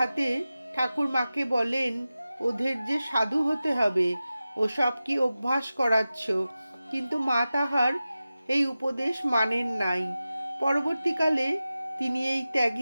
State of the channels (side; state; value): both; inverted; correlation -0.95